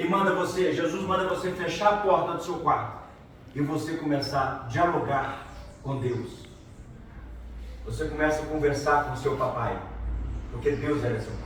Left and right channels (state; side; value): identical; both; correlation 1.00